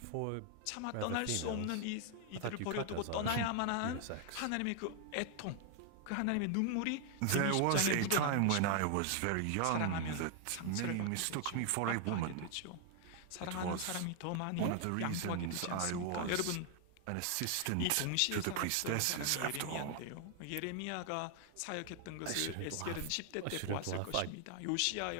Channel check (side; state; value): both; different; correlation 0.00